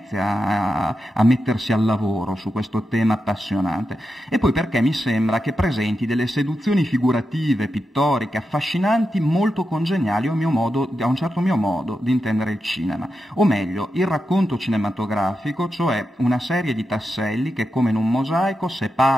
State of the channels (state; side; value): normal; both; correlation 0.88